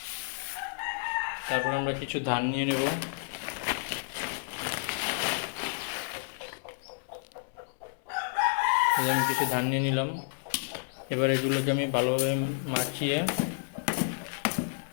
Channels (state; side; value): silent; right; 57 dB below the other